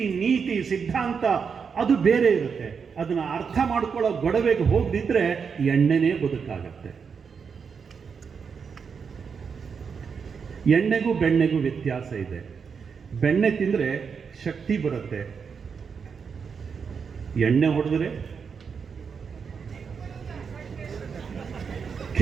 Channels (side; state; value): left; quieter; 6.1 dB